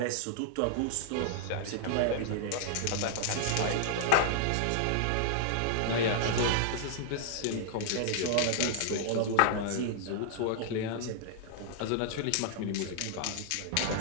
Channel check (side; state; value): both; different; correlation -0.01